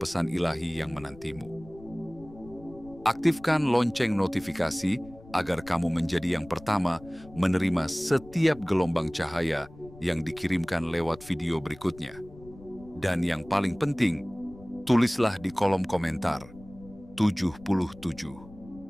pesan ilahi yang menantimu. Aktifkan lonceng notifikasi agar kamu menjadi yang pertama menerima setiap gelombang cahaya yang dikirimkan lewat video berikutnya. Dan yang paling penting, tulislah di kolom komentar 77.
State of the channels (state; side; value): noise; left; rumble, 20 dB below the sound